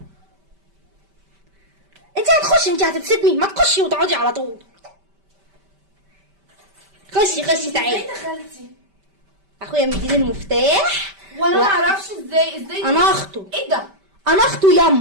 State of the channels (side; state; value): left; late; 5.1 ms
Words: انت هتخشي، انت هتبسطني، ما تخشي وتقعدي على طول. خشي خشي تعالي. ازاي دخلتي؟ اخويا مديني المفتاح وانا ما اعرفش ازاي انا اخته. ايه ده؟ انا اخته